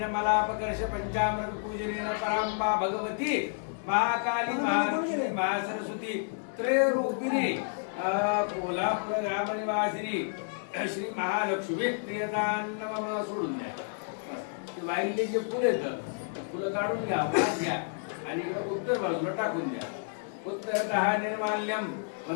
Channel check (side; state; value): right; silent; digital silence